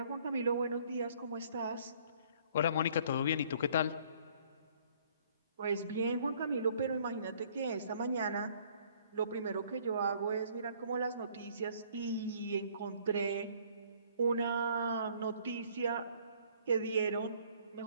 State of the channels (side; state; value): both; inverted; correlation -0.59